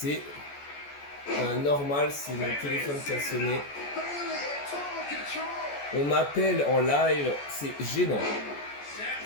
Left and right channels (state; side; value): late; right; 14 ms